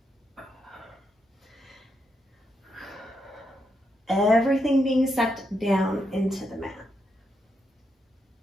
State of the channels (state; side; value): normal; both; correlation 0.81